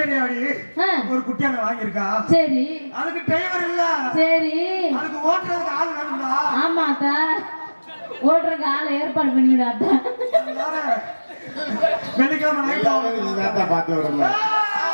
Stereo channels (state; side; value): inverted; both; correlation -1.00